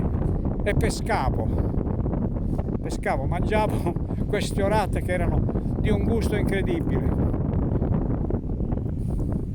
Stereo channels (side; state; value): both; identical; correlation 1.00